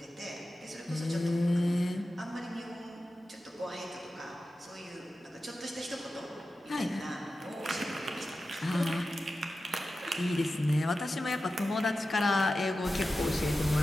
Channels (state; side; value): normal; both; correlation 0.93